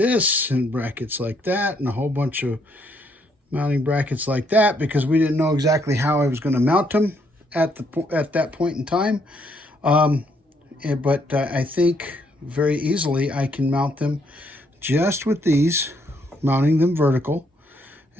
and brackets like that and a whole bunch of mounting brackets like that, because we didn't know exactly how I was going to mount them at that point in time. But I think very easily I can mount them just with these, mounting them vertical.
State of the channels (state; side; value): normal; both; correlation 0.71